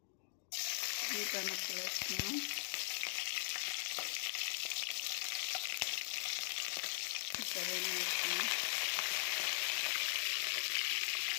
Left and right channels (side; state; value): right; silent; digital silence